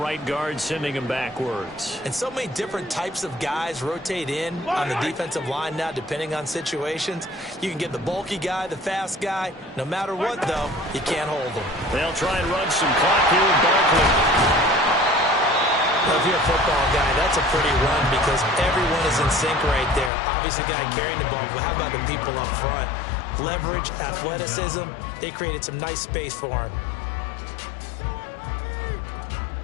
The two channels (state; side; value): drops out; right; at 20.1 s